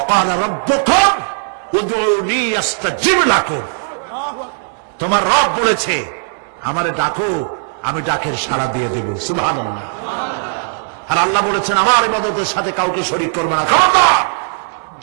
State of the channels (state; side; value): silent; left; digital silence